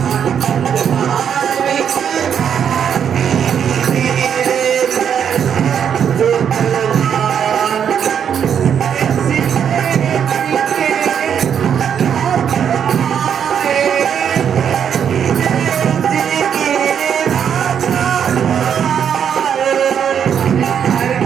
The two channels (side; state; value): left; quieter; 8.2 dB